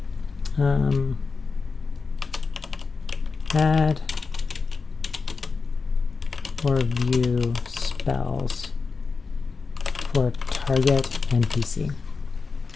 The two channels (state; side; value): quieter; right; 4.6 dB